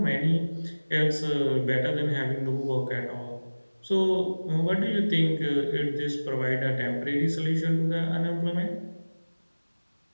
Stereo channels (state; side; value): inverted; both; correlation -1.00